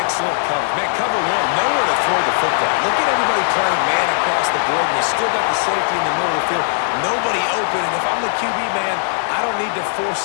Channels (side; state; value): right; silent; 67 dB below the other